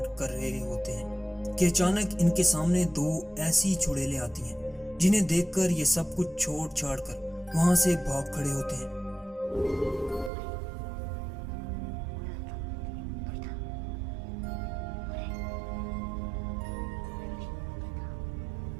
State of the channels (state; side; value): drops out; left; at 10.3 s